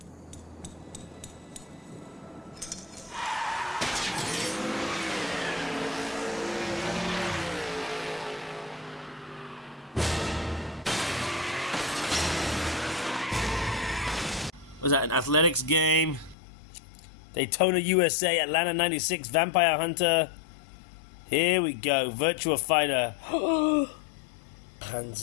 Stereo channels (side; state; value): right; drops out; at 16.4 s